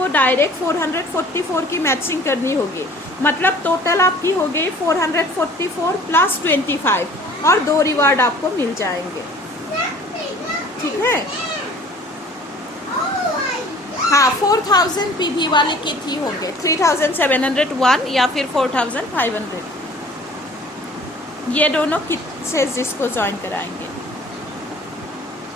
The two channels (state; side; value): normal; both; correlation 0.50